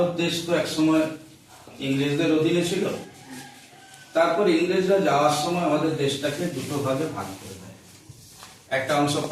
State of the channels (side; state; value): both; identical; correlation 1.00